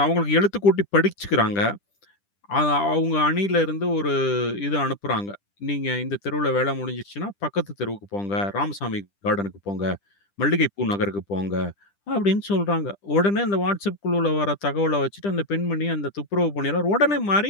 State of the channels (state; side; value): late; right; 10 ms